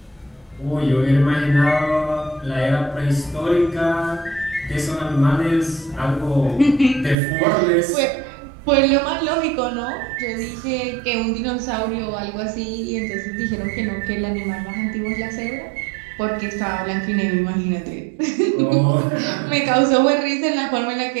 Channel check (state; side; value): drops out; left; at 7.2 s